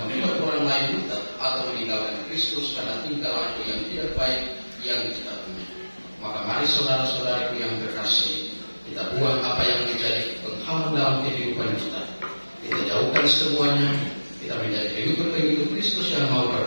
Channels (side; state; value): both; inverted; correlation -1.00